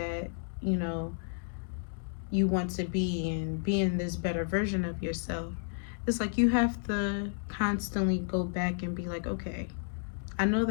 you know, you want to be and being this better version of yourself, it's like you have to constantly go back and be like, okay, I know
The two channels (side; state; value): right; silent; digital silence